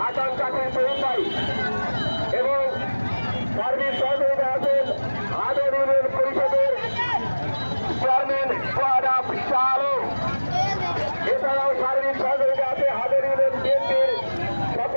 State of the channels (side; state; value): both; inverted; correlation -1.00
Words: জাকির শহীদ ভাই এবং সার্বিক সহযোগিতা আছেন হাদর ইউনিয়ন পরিষদের চেয়ারম্যান সোহাব শাহ আলম। এছাড়াও সার্বিক সহযোগিতা আছে হাদর ইউনিয়ন বিএনপির